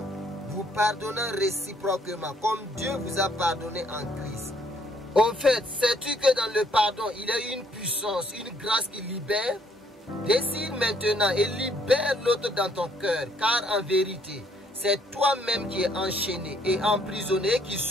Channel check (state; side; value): normal; both; correlation 0.66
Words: vous pardonnant réciproquement, comme Dieu vous a pardonné en Christ. Au fait, sais-tu que dans le pardon, il y a une puissance, une grâce qui libère? Décide maintenant et libère l'autre dans ton cœur, car en vérité, c'est toi-même qui es enchaîné et emprisonné qui